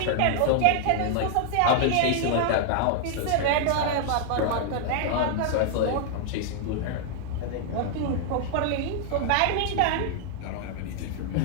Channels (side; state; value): both; different; correlation -0.01